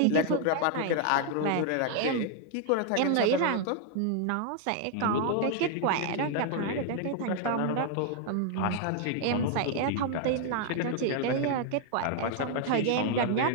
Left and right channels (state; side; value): different; both; correlation 0.00